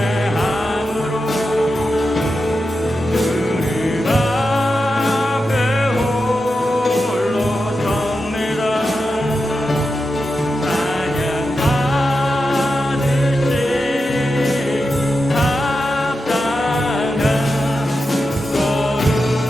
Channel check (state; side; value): normal; both; correlation 0.89